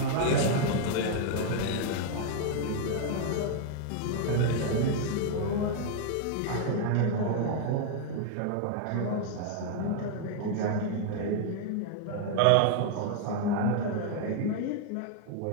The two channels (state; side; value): different; both; correlation 0.00